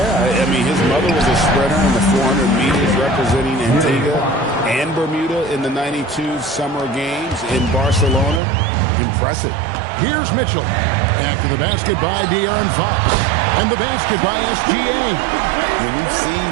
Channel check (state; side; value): drops out; left; at 8.4 s